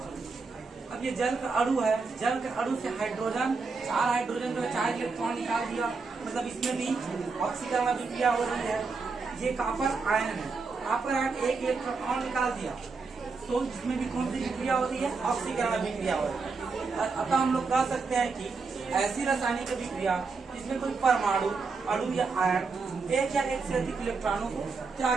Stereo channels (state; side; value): quieter; left; 4.5 dB